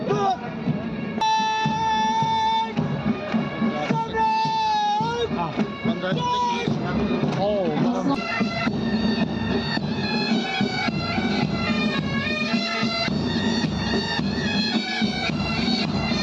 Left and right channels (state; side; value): identical; both; correlation 1.00